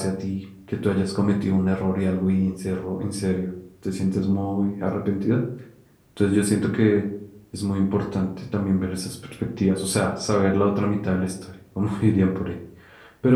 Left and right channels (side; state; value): both; identical; correlation 1.00